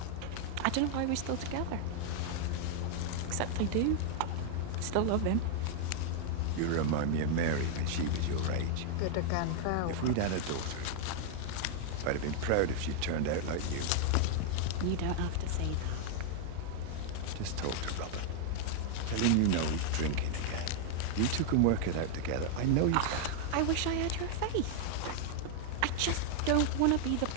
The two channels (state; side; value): different; both; correlation 0.00